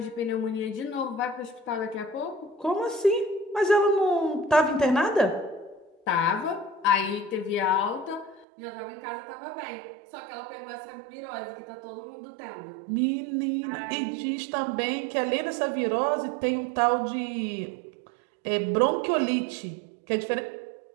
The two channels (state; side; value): drops out; left; at 8.5 s